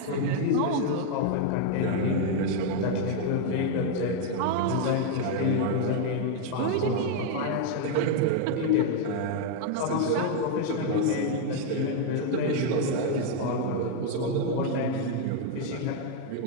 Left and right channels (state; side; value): different; both; correlation 0.01